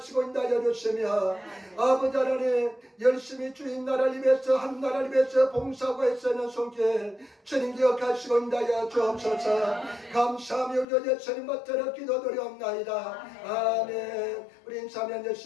인도하여 주시며 아버지 하나님 열심히 주인 나라를 위해서 한 나라를 위해서 봉사하고 애쓰는 손길 주님 기억하시고 인도하여 주옵소서. 감사하며 우리 예수님 받들어 기도드리옵나이다. 아멘. 우리 인사하면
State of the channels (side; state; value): right; drops out; at 10.9 s